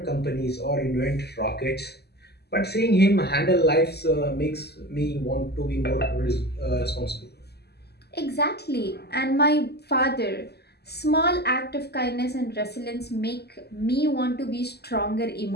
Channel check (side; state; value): right; late; 0.47 ms